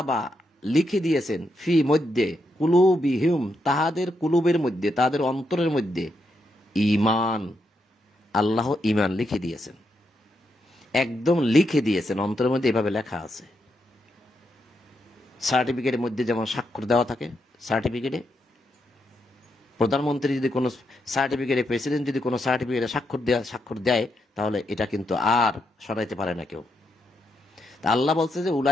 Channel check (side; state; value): both; normal; correlation 0.81